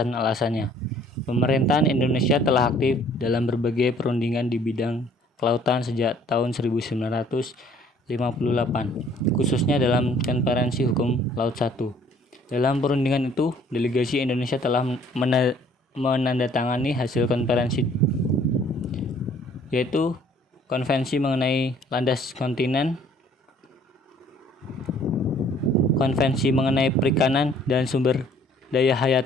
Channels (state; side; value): normal; both; correlation 0.57